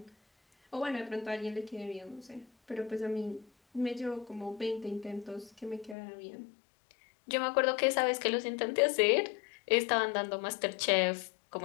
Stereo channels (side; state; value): right; drops out; at 6.0 s